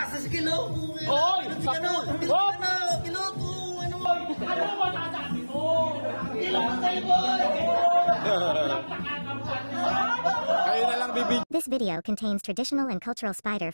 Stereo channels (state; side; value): inverted; both; correlation -1.00